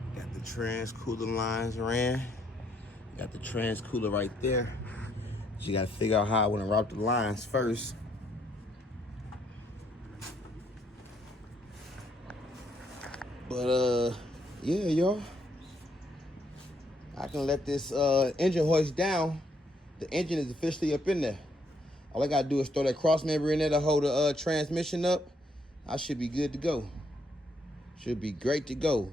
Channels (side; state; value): both; normal; correlation 0.72